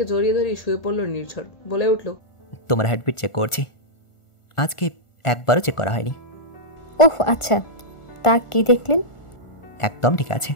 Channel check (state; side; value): late; right; 1.4 ms